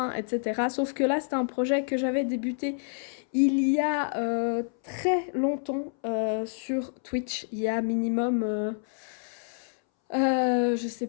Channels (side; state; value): right; silent; 59 dB below the other